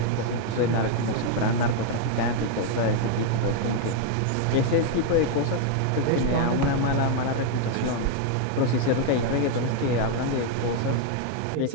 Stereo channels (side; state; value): both; different; correlation 0.00